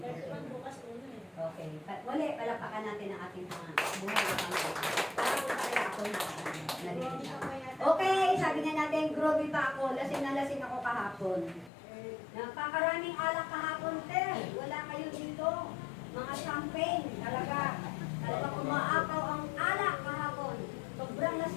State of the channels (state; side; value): drops out; right; at 11.7 s